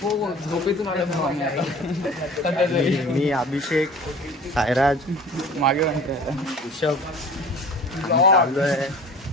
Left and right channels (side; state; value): both; normal; correlation 0.43